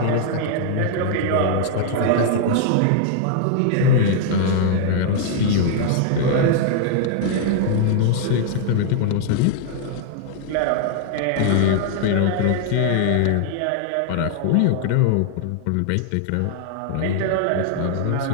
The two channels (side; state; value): both; different; correlation -0.01